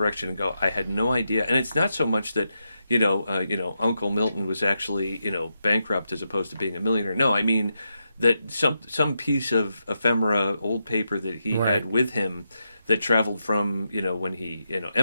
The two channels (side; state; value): both; inverted; correlation -0.85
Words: and go, I had no idea. And it's not so much that Uncle Milton was actually bankrupt as opposed to being a millionaire. No, I mean that some piece of ephemera, old paper that he had with him that traveled from when he